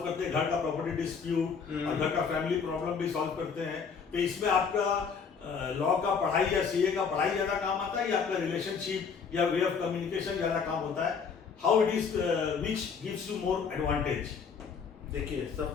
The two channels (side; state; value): right; quieter; 6.0 dB